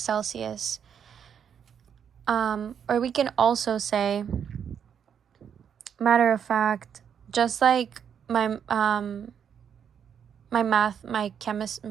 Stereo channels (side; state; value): left; quieter; 8.0 dB